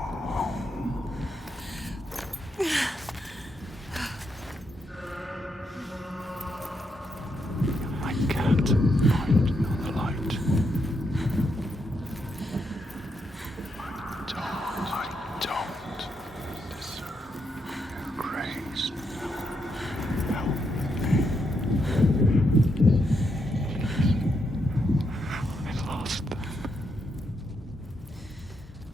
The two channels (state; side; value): normal; both; correlation 0.80